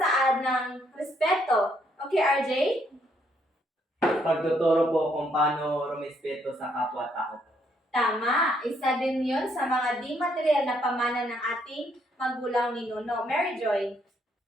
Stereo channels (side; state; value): both; normal; correlation 0.71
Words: ng respeto. Okay, RJ? Pagtuturo po kung paano rumispeto sa kapwa-tao. Tama. Isa din yun sa mga di material na pamana ng ating magulang ni Nuno. Mary Joy?